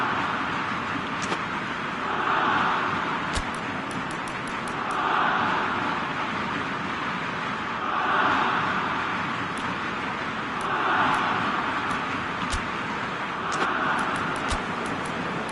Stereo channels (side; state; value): both; identical; correlation 1.00